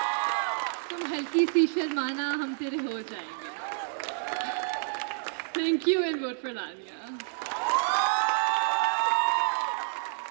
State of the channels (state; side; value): silent; left; digital silence